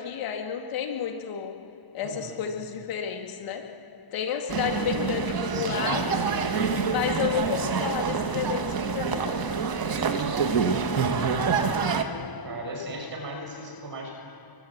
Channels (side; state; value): right; late; 1.0 ms